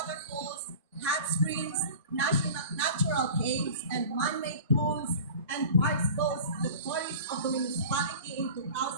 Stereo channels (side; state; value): both; inverted; correlation -0.38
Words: hot springs, natural caves, and man-made pools and parks boast the tourists of the municipality in